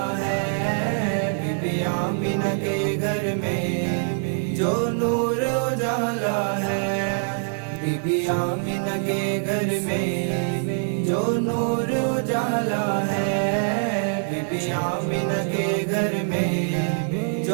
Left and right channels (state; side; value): silent; left; digital silence